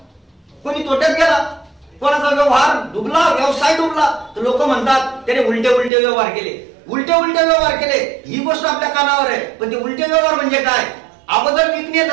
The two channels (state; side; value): drops out; left; at 5.9 s